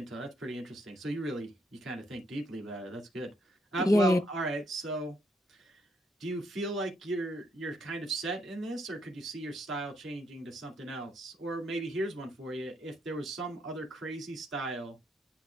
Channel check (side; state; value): both; normal; correlation 0.74